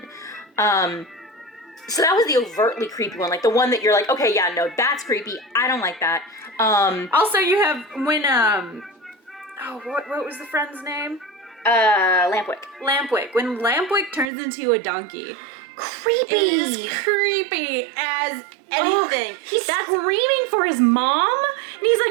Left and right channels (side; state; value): left; drops out; at 14.3 s